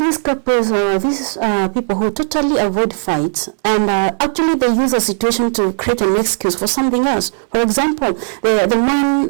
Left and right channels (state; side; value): silent; left; 69 dB below the other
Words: couples, these people who totally avoid fights, and actually they use a situation to create an excuse for something else. For example, the man